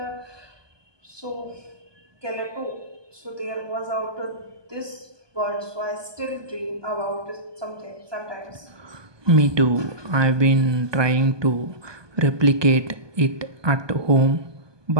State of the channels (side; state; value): left; late; 1.2 ms